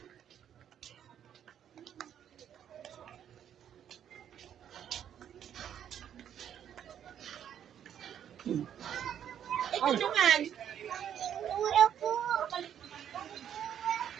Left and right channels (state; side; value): quieter; left; 9.5 dB